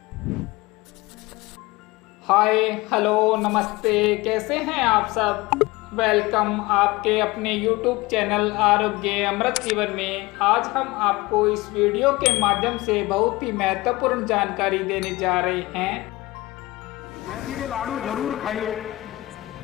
hello नमस्ते, कैसे हैं आप सब। वेलकम आपके अपने YouTube चैनल आरोग्य अमृत जीवन में। आज हम आपको इस वीडियो के माध्यम से बहुत ही महत्वपूर्ण जानकारी देने जा रहे हैं। मेथी के लाडू जरूर खाइए,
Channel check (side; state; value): right; quieter; 20.5 dB